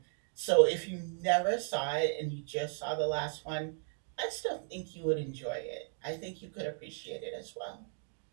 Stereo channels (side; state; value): left; silent; 54 dB below the other